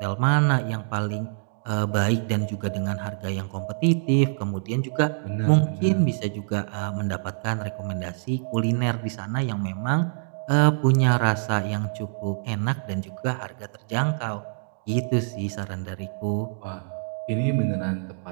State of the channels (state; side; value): silent; left; digital silence